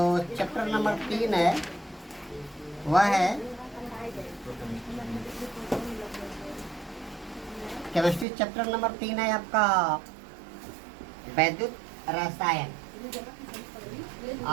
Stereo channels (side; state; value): left; drops out; at 8.2 s